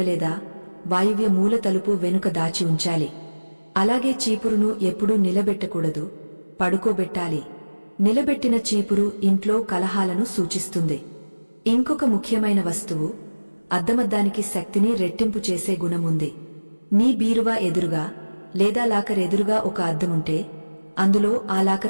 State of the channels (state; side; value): inverted; both; correlation -1.00